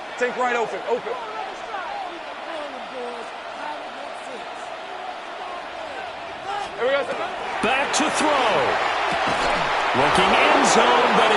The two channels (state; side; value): identical; both; correlation 1.00